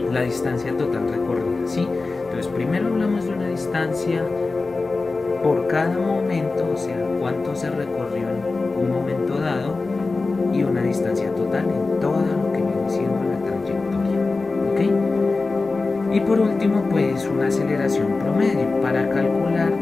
la distancia total recorrida, ¿sí? Entonces primero hablamos de una distancia por cada momento, o sea, cuánto se recorrió en un momento dado, y una distancia total en todo lo que viene siendo la trayectoria, ¿ok? Y por último, pues una aceleración promedio para calcular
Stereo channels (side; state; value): right; quieter; 3.7 dB